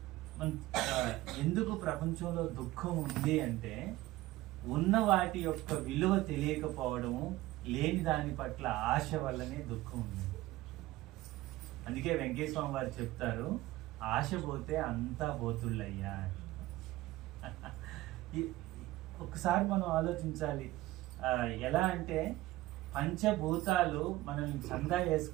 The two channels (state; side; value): quieter; left; 17.5 dB